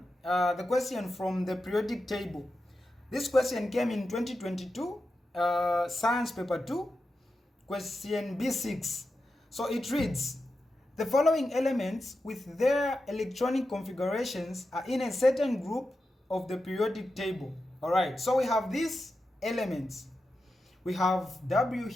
the question from the periodic table. This question came in 2022, Science Paper 2, question B6. So it reads, the following elements with their electronic configurations are in a certain group of the periodic table. All right, so we have these elements. We have W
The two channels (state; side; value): normal; both; correlation 0.90